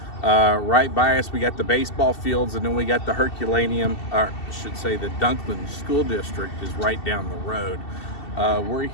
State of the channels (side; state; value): right; late; 2.7 ms